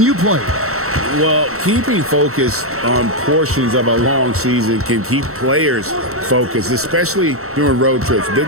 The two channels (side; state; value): left; late; 0.63 ms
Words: you played? Well, keeping focus on portions of a long season can keep players focused, especially during road trips.